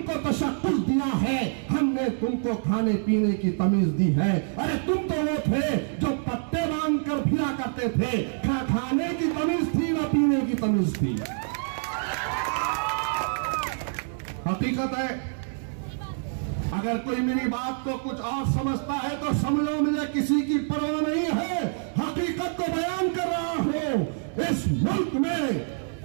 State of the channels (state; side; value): silent; left; digital silence